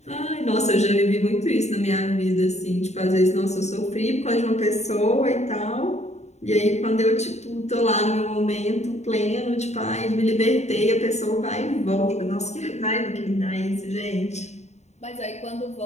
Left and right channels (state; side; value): late; right; 0.32 ms